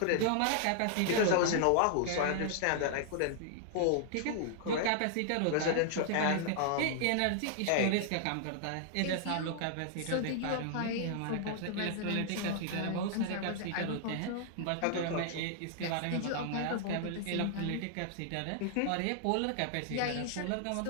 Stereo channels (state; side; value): different; both; correlation -0.01